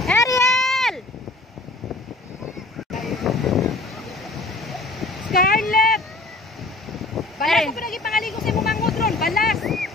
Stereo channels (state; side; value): quieter; right; 3.0 dB